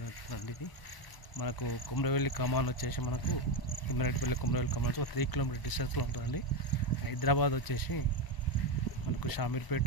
ఇది మనకు కొమరవెల్లి కమాన్ వచ్చేసి మనకు తిమ్మిరెడ్డిపల్లి కొమరవెల్లి కమాన్ ఒక 3 కిలోమీటర్ డిస్టెన్స్లో ఉంటుందండి. హైదరాబాద్ వచ్చేసి మనకు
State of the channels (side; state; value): right; late; 1.0 ms